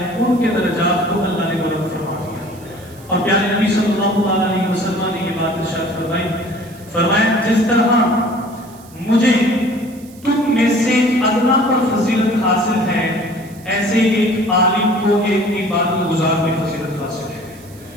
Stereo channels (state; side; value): noise; right; hiss, 24 dB below the sound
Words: ان کے درجات کو اللہ نے بلند فرما دیا. اور پیارے نبی صلی اللہ علیہ وسلم نے یہ بات ارشاد فرمائی، فرمایا جس طرح مجھے تم میں سے ادنا پر فضیلت حاصل ہے، ایسے ایک عالم کو ایک عبادت گزار میں فضیلت حاصل ہے.